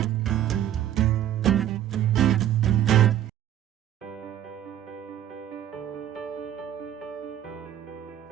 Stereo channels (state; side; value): quieter; left; 11.2 dB